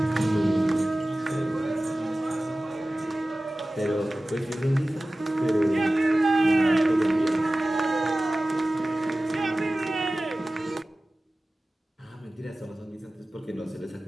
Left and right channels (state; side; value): normal; both; correlation 0.96